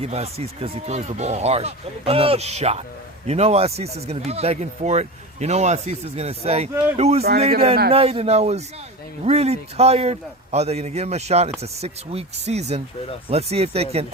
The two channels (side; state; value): both; normal; correlation 0.27